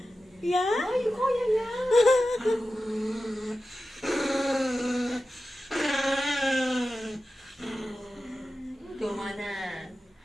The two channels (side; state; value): both; normal; correlation 0.93